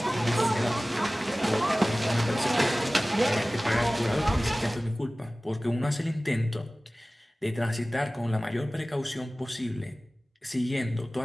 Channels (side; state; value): both; normal; correlation 0.97